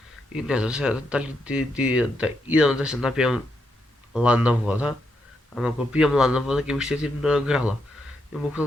и не знам сега дали да идам да се напием ладна вода. Ама ако пием ладна вода, ќе ми щетим на грала. И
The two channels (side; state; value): both; normal; correlation 0.80